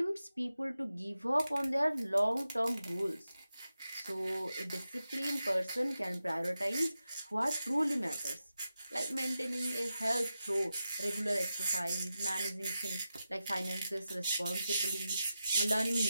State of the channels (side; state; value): both; inverted; correlation -0.91